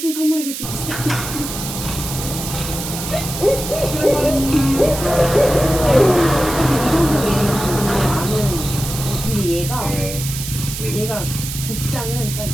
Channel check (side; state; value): right; noise; hiss, 7 dB below the sound